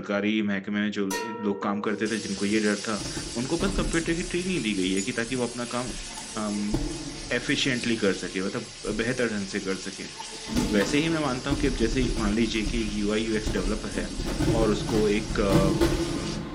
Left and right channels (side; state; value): both; identical; correlation 1.00